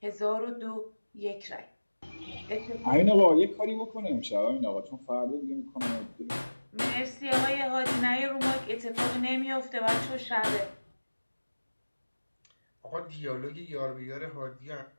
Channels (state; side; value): inverted; both; correlation -1.00